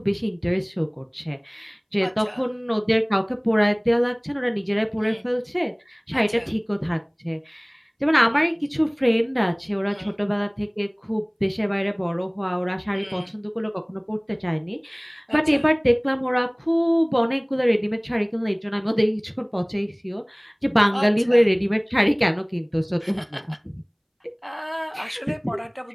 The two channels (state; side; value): identical; both; correlation 1.00